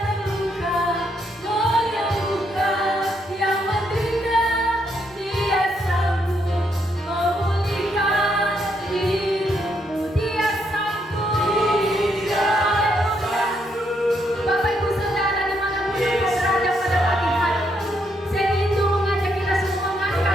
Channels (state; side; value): normal; both; correlation 0.76